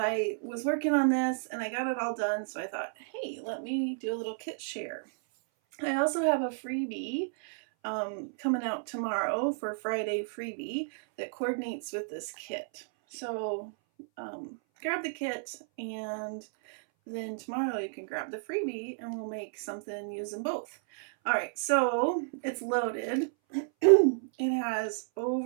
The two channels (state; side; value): silent; left; 57 dB below the other